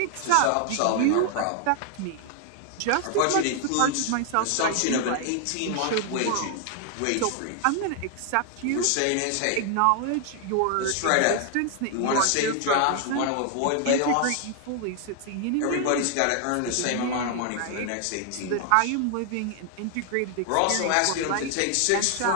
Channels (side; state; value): both; different; correlation 0.00